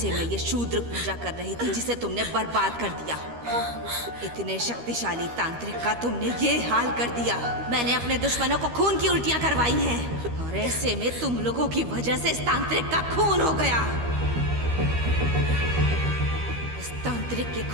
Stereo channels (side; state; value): left; late; 13 ms